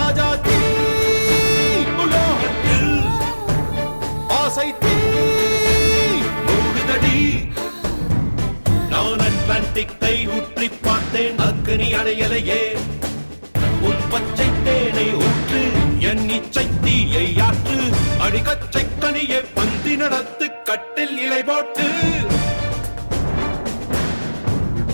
தீ உலோகத்தில் ஆசை தீ மூடுதடி நான் அட்லாண்டிக்கை ஊற்றி பார்த்தேன் அக்னி அணையலையே உன் பச்சை தேனை ஊற்று என் இச்சை தீயை ஆற்று அடிக்கச்சை கனியை பந்தி நடத்து கட்டில் இலை போட்டு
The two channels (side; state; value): both; inverted; correlation -1.00